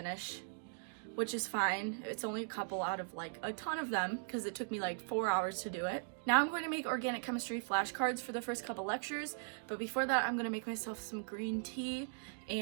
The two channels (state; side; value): silent; left; digital silence